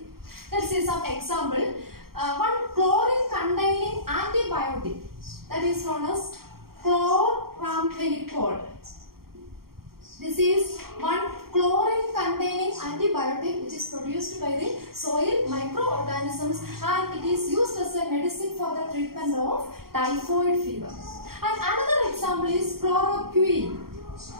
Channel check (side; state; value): left; late; 0.93 ms